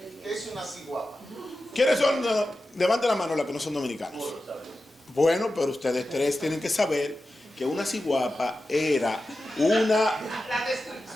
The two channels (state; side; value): normal; both; correlation 0.92